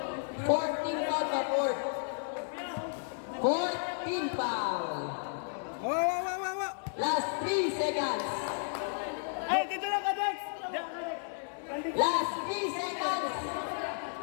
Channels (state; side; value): silent; right; digital silence